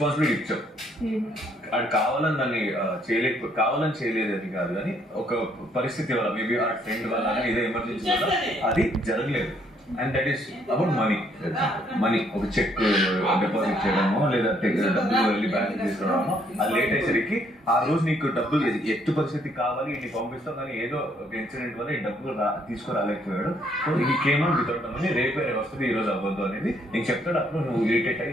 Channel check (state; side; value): normal; both; correlation 0.68